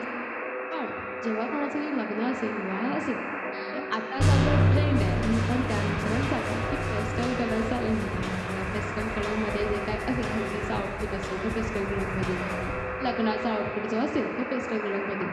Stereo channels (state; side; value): identical; both; correlation 1.00